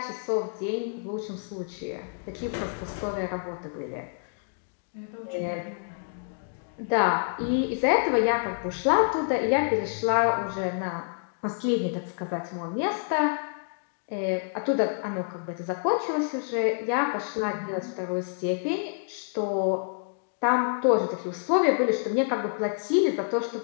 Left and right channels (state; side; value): silent; right; digital silence